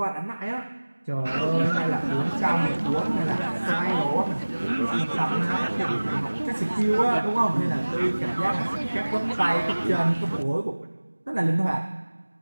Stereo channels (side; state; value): both; inverted; correlation -1.00